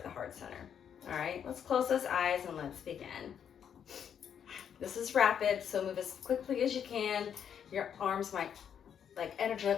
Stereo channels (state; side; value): quieter; right; 8.3 dB